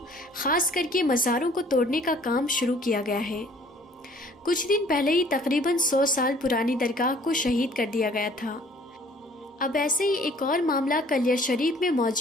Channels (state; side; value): normal; both; correlation 0.56